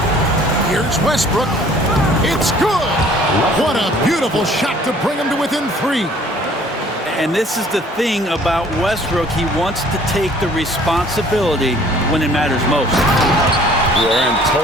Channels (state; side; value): normal; both; correlation 0.55